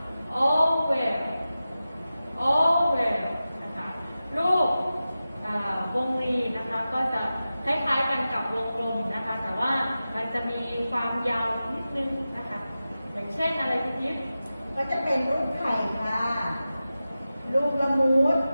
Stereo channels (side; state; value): both; inverted; correlation -0.94